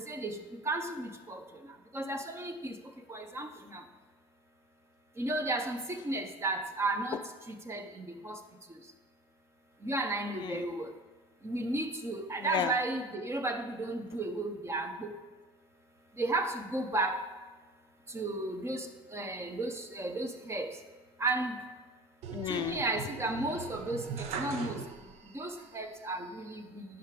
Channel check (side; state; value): both; normal; correlation 0.41